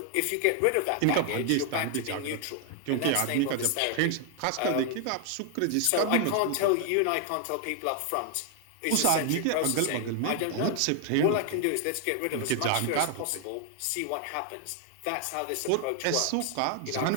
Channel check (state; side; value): different; both; correlation 0.00